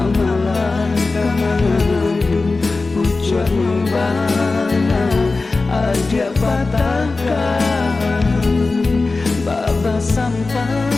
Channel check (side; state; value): right; quieter; 3.7 dB